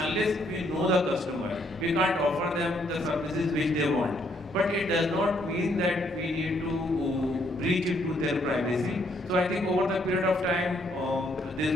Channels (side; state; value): both; normal; correlation 0.70